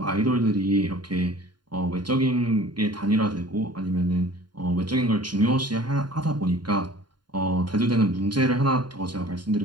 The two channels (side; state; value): left; late; 0.71 ms